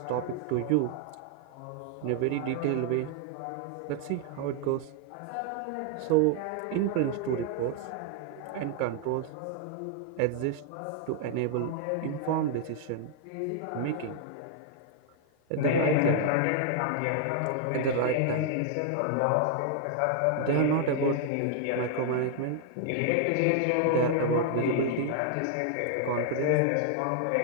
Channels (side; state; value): both; different; correlation 0.00